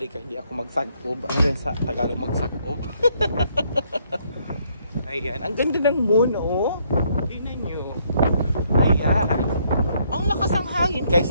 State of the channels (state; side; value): inverted; both; correlation -0.70